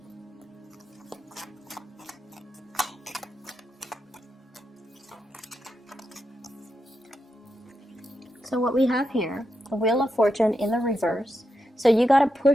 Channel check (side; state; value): both; normal; correlation 0.86